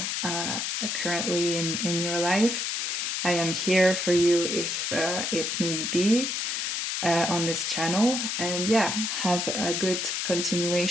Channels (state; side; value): noise; left; hiss, 1 dB below the sound